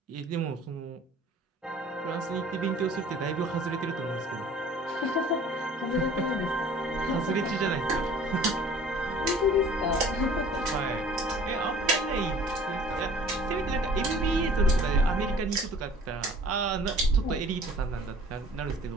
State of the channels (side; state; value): both; normal; correlation 0.49